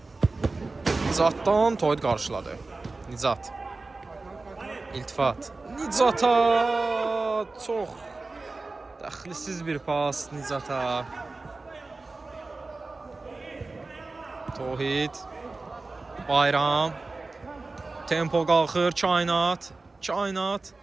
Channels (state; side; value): quieter; left; 3.5 dB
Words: Tohid qarşıladı. İltifat. Nicata çox dəxlisiz bir pas Nicata. Tohid. Bayram. Tempo qalxır.